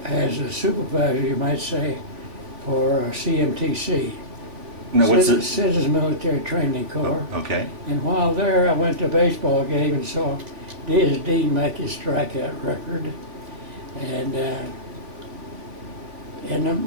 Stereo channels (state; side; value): late; left; 3.5 ms